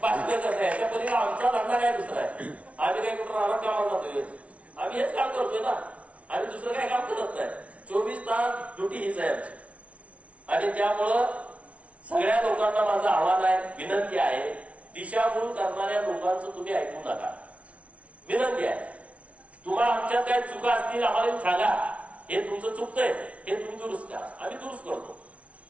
करणं. याच्या पलीकडे आमचा धंदा काय दुसरा आहे. आम्ही काही कुठं राहणार कामाला जातोय, आम्ही हेच काम करतोय ना. आम्ही दुसरं काही काम करत नाही. 24 तास ड्युटी हीच आहे आमची. आणि त्यामुळं सगळ्या लोकांना माझं आव्हान आहे, विनंती आहे, दिशाभूल करणाऱ्या लोकांचं तुम्ही ऐकू नका. विनंती आहे, तुम्हाला आमच्यात काही चुका असतील आम्हाला सांगा. हे तुमचं चुकतंय, हे तुम्ही दुरुस्त करा, आम्ही दुरुस्त करतो.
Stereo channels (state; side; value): late; left; 0.064 ms